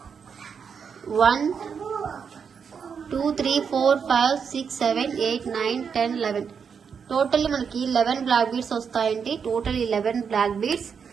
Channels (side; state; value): left; quieter; 6.5 dB